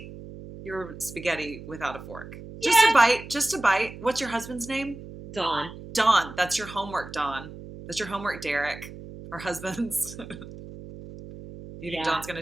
your spaghetti without a fork. Just a Yeah. bite, just a bite. What's your husband's name? Dawn. Don. That's your homework, Don. That's your homework, Derek. Our husbands. You think Yeah. Don's going to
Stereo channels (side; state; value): right; noise; hum, 14 dB below the sound